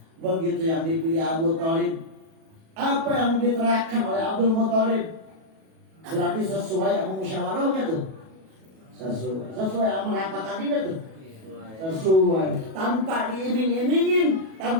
Begitu yang dipilih Abu Thalib, apa yang diterapkan oleh Abdul Muthalib berarti sesuai sama musyawarahnya tuh, sesuai sama rapat tadi tuh, sesuai, tanpa diiming-imingin,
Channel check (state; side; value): late; left; 37 ms